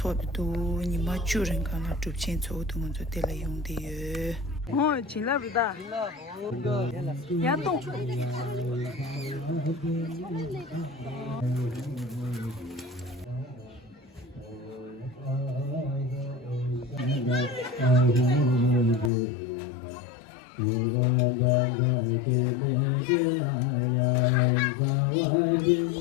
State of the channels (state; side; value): drops out; right; at 19.1 s